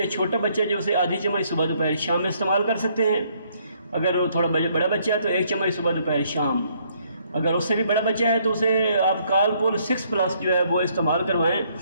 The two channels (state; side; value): inverted; both; correlation -0.68